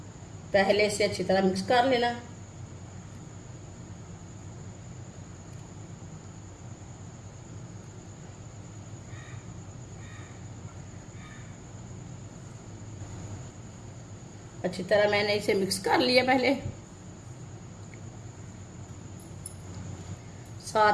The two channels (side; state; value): both; identical; correlation 1.00